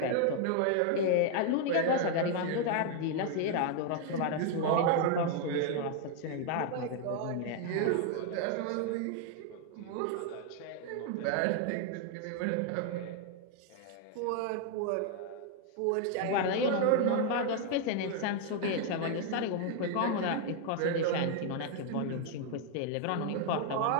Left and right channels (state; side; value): different; both; correlation 0.00